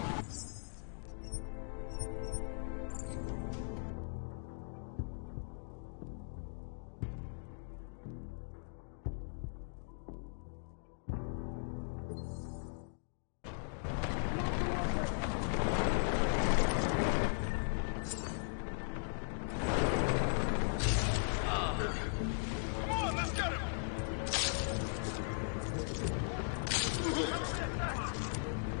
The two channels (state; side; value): silent; right; digital silence